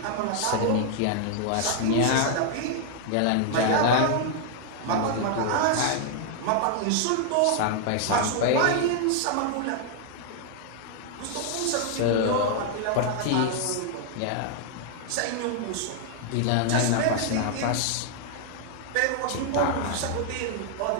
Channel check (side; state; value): both; different; correlation 0.00